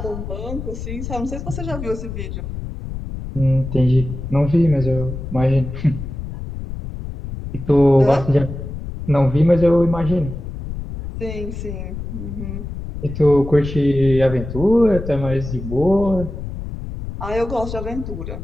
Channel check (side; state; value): left; noise; rumble, 8 dB below the sound